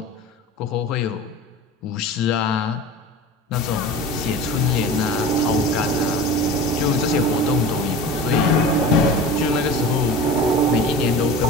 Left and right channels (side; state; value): both; normal; correlation 0.35